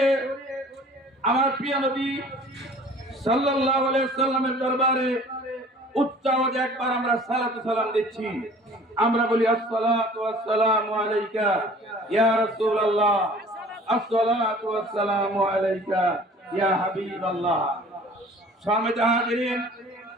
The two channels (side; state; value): both; normal; correlation 0.49